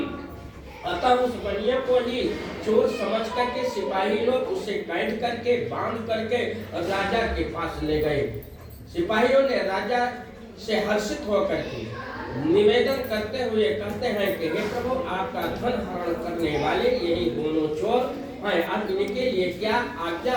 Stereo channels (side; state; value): both; identical; correlation 1.00